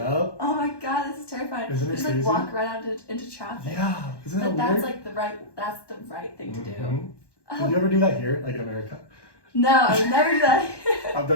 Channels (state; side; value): late; right; 1.1 ms